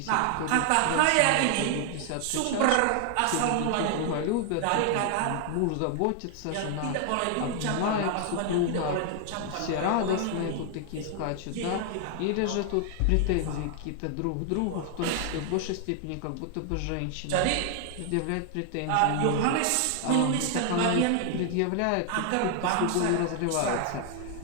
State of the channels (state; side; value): different; both; correlation 0.00